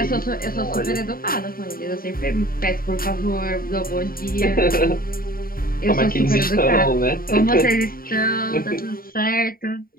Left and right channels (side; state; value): right; late; 0.42 ms